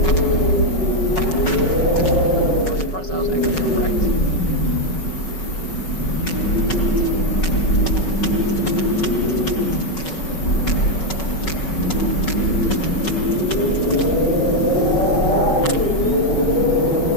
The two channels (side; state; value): right; late; 5.4 ms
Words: I'm surprised I was actually correct.